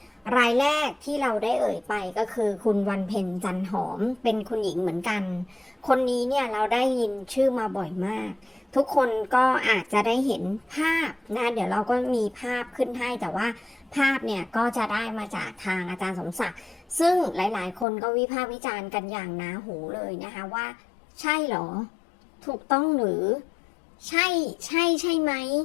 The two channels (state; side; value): drops out; right; at 17.9 s